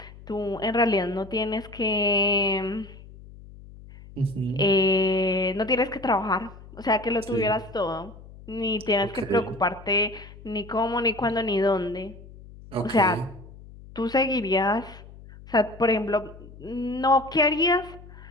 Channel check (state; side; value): noise; left; hum, 19 dB below the sound